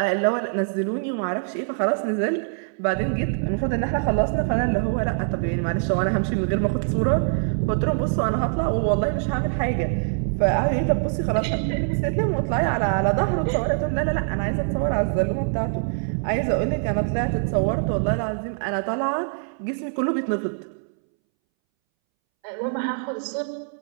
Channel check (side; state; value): left; silent; 63 dB below the other